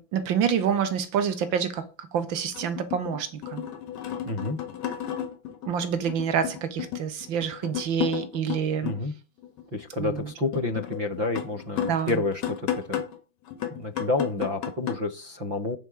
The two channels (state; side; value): late; left; 5.9 ms